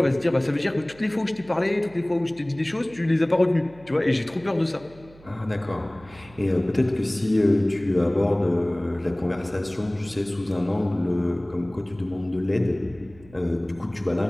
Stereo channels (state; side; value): noise; right; hum, 23 dB below the sound